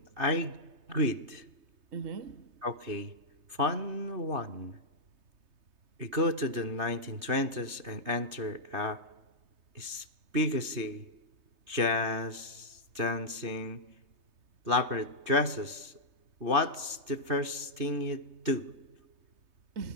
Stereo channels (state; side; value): late; left; 3.2 ms